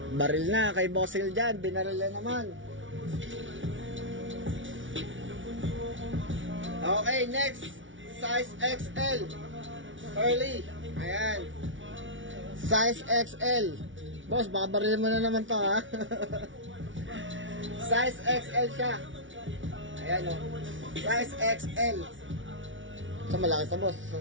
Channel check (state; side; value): late; left; 0.56 ms